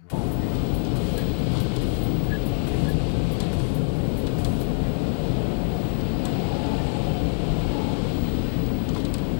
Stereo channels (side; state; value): right; silent; digital silence